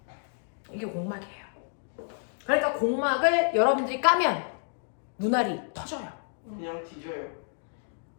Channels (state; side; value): silent; right; digital silence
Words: 이게 공막이에요. 그러니까 공막을 여러분들이 까면 눈알이 터져요. 그냥 뒤져요.